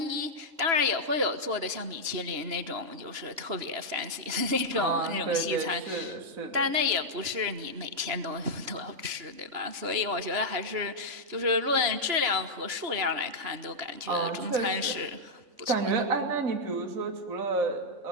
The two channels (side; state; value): left; late; 3.0 ms